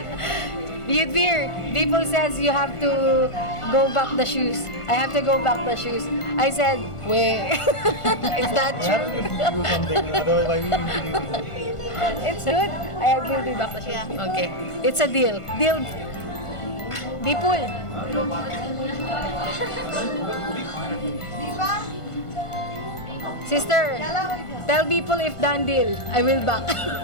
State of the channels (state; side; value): late; right; 1.5 ms